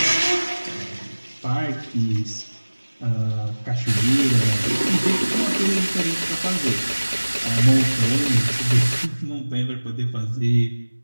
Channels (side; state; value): both; inverted; correlation -1.00